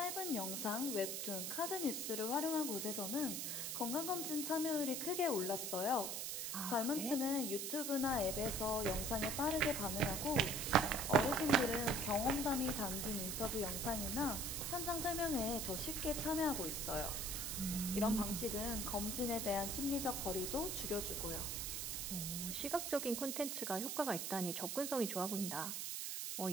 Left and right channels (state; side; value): noise; right; hiss, 2 dB below the sound